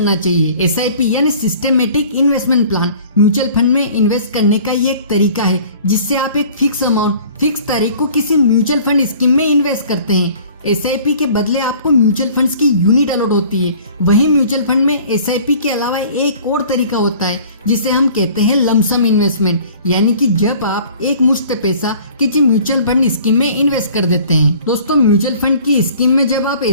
चाहिए। एसआईपी यानी systematic investment plan mutual fund में इन्वेस्ट करने का ये एक तरीका है जिससे आप एक फिक्स अमाउंट फिक्स तारीख को किसी म्यूचुअल फंड स्कीम में इन्वेस्ट करते हैं। एसआईपी के बदले आपको म्यूचुअल फंड्स की यूनिट अलॉट होती है। वहीं म्यूचुअल फंड में एसआईपी के अलावा एक और तरीका होता है जिसे हम कहते हैं लमसम इन्वेस्टमेंट, यानी कि जब आप एक मुश्त पैसा किसी म्यूचुअल फंड स्कीम में इन्वेस्ट कर देते हैं। दोस्तों, म्यूचुअल फंड की स्कीम में जब आप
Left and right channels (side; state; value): both; inverted; correlation -0.50